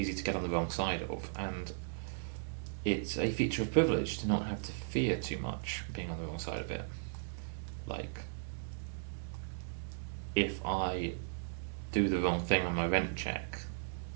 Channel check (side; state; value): left; silent; digital silence